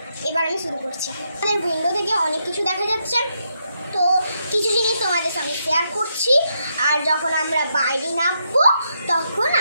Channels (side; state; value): both; inverted; correlation -0.80